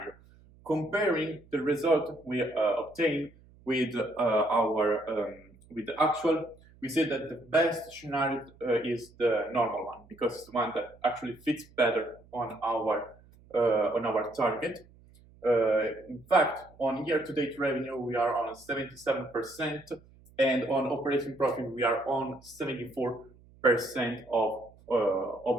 Comparing the result we obtain with the actual, we see that the best scenario is the normal one, because it's the one that actually fits better on our target. In fact, on year-to-date revenue, we are on 77%, and on operating profit, we are on 74% of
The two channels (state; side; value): noise; right; hum, 26 dB below the sound